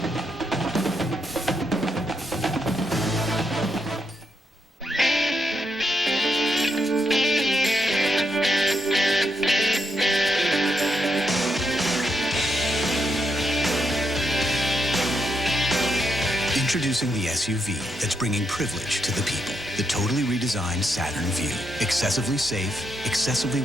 Introducing the SUV that's bringing privilege to the people. The totally redesigned Saturn Vue. Excessively safe, excessively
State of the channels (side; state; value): both; normal; correlation 0.80